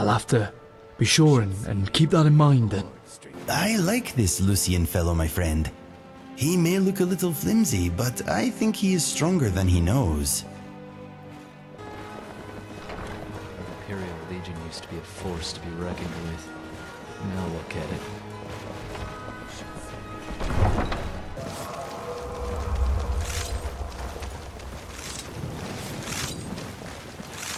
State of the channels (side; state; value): both; identical; correlation 1.00